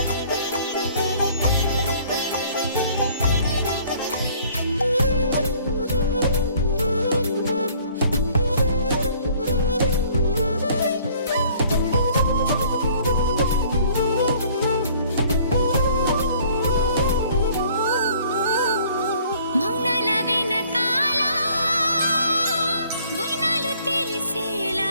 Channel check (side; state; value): both; inverted; correlation -0.56